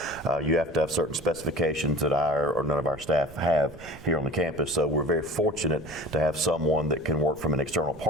You have to have certain specifications that I or none of our staff have here on the campus. So we're very fortunate to have someone that can work from an external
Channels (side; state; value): right; noise; rumble, 18 dB below the sound